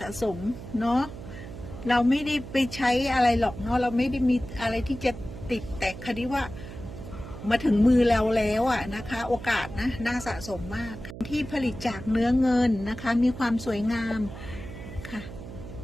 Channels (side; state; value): right; noise; hum, 12 dB below the sound